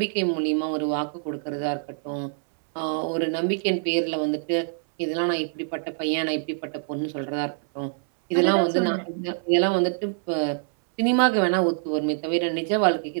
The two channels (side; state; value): left; silent; 62 dB below the other